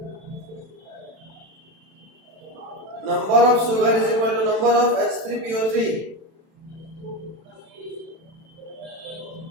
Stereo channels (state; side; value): late; left; 31 ms